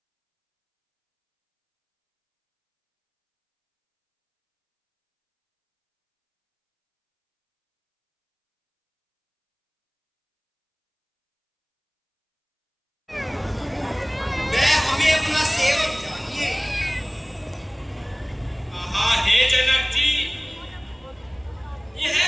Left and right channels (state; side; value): identical; both; correlation 1.00